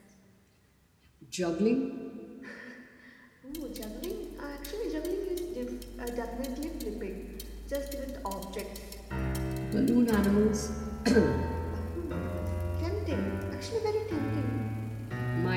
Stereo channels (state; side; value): identical; both; correlation 1.00